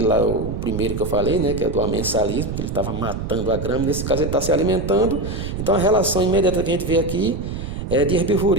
lá, o primeiro que eu falei, né, que é do amensalismo, que ele estava matando a grama. Nesse caso ele está se alimentando. Então a relação imediata que a gente vê aqui é de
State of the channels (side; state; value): right; noise; rumble, 6 dB below the sound